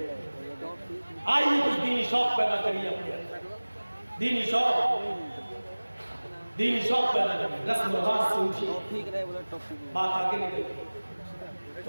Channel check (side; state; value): both; inverted; correlation -1.00